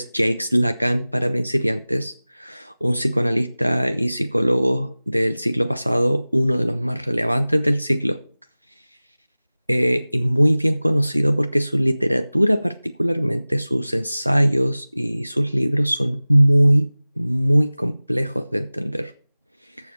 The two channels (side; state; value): both; inverted; correlation -0.99